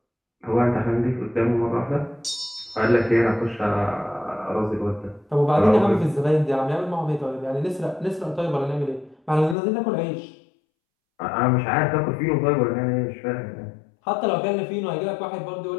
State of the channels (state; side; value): drops out; right; at 9.6 s